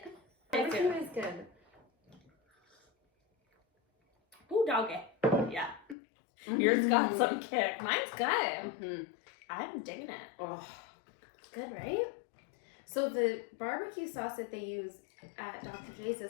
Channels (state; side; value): drops out; right; at 6.0 s